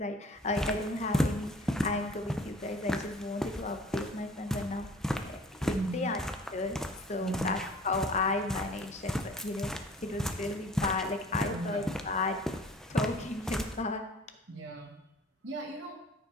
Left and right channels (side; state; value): both; normal; correlation 0.49